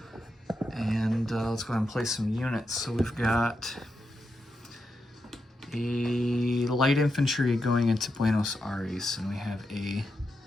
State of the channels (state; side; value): normal; both; correlation 0.86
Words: And let's go ahead and place some units. So we've got a light infantry going into Buenos Aires, and we have a